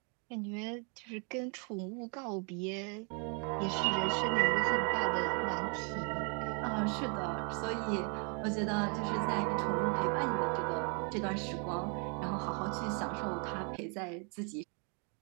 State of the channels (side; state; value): left; quieter; 37.0 dB